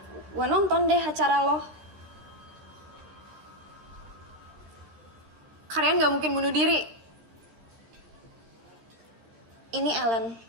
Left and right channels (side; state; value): left; late; 13 ms